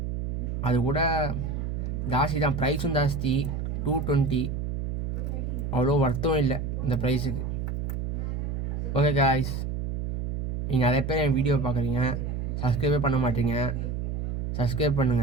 அது கூட ஜாஸ்தி தான், ப்ரைஸும் ஜாஸ்தி. 220, அவ்வளோ ஒர்த்தும் இல்லை இந்த ப்ரைஸுக்கு. ஓகே காய்ஸ், நீங்கள் நிறைய பேர் என் வீடியோ பார்க்குறீங்க, சப்ஸ்கிரைபே பண்ண மாட்டீங்க. சப்ஸ்கிரைப்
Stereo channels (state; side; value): noise; right; hum, 2 dB below the sound